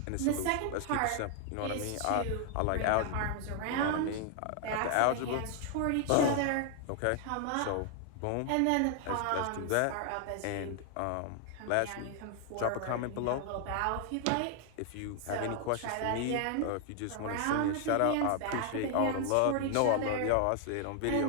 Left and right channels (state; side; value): different; both; correlation 0.00